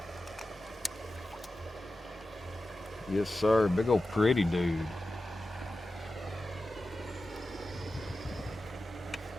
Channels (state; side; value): normal; both; correlation 0.93